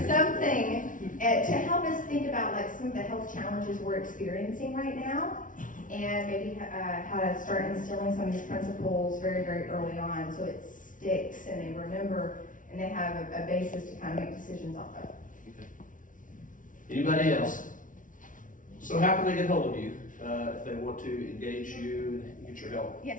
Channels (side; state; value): right; late; 0.38 ms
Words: something to help us think about like some of the health challenges we're experiencing right now, and maybe how to start instilling some of these principles very, very early on, so it sticks and they remember and they have a basis to kind of make decisions off of. Anybody else? So how can they get hold of you if they want to engage you and get your help?